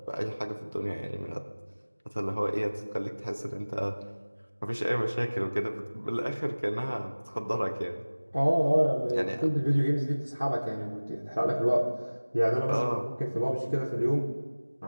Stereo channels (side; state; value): both; inverted; correlation -1.00